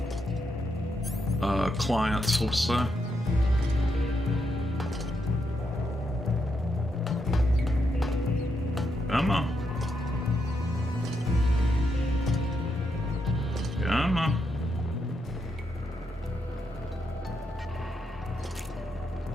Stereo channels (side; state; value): both; normal; correlation 0.81